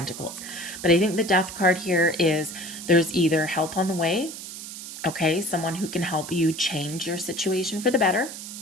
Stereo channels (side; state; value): right; noise; hiss, 10 dB below the sound